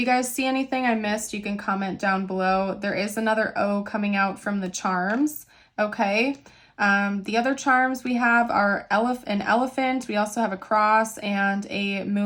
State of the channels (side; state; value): both; identical; correlation 1.00